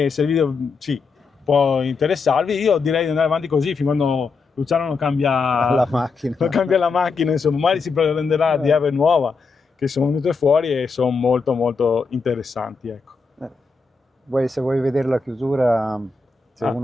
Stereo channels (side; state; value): right; quieter; 4.5 dB